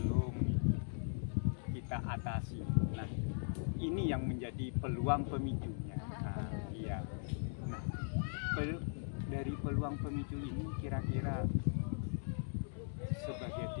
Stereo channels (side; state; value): right; silent; 52 dB below the other